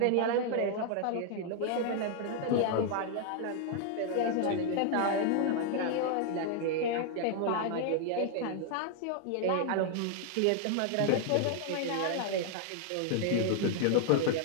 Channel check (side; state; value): both; different; correlation 0.00